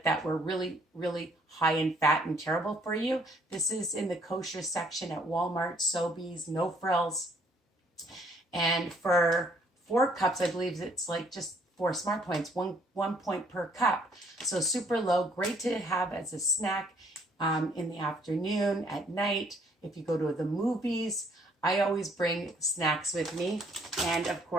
that were really, really high in fat and terrible for you. This is in the kosher section at Walmart, Sobeys, no frills. And for 4 cups, I believe it's like just 4 smart points, one point per cup. So super low, great to have as a snack in the afternoon, at night. If you go to the movies, I always bring snacks with me. And of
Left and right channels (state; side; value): normal; both; correlation 0.64